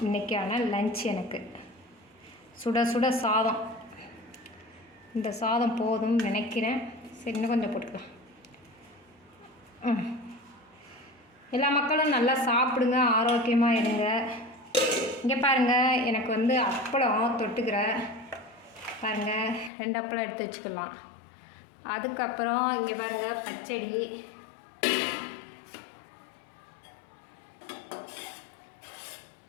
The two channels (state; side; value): drops out; right; at 19.7 s